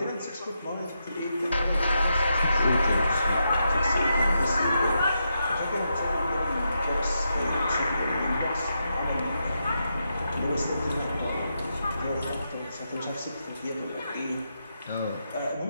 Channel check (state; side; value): inverted; both; correlation -0.84